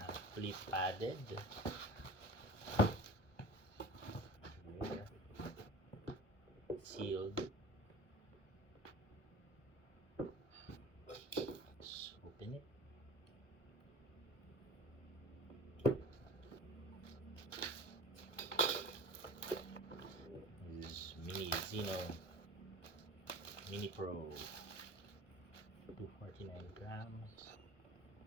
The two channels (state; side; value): late; right; 1.1 ms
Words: fully padded. Here, sealed. Let's open it. This is Mini Zino Mini Pro, 249 grams.